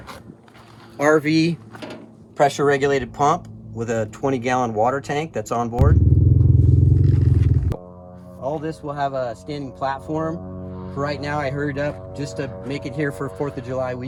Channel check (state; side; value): identical; both; correlation 1.00